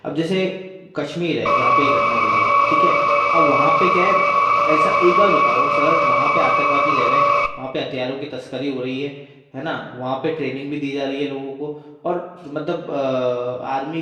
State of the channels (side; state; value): both; identical; correlation 1.00